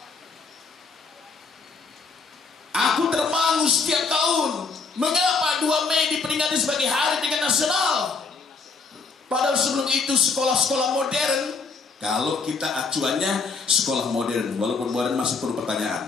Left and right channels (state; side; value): quieter; right; 4.5 dB